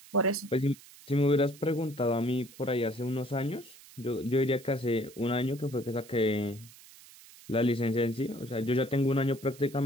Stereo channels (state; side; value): noise; right; hiss, 21 dB below the sound